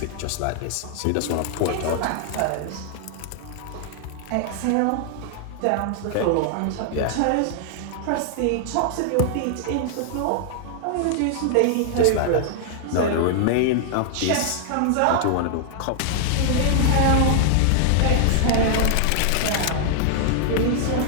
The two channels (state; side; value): different; both; correlation -0.01